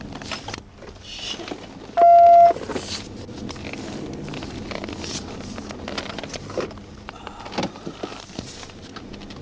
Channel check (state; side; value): identical; both; correlation 1.00